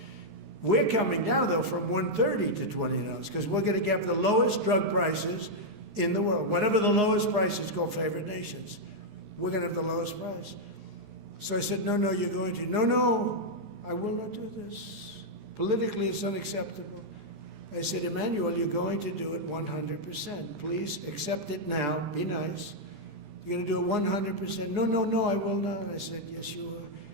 We're coming now, though, from $130 to $20, because we're going to get the lowest drug prices in the world. Whatever the lowest price is called favored nations, we're going to have the lowest price. So I said, no, you're going to. No, I will not do this. Politically, it's unacceptable. I said, Emmanuel, you're going to do it 100%. Please accept it now. Be nice. You're going to do it 100%. No, I will not. I said, yes, you are.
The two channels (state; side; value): late; left; 14 ms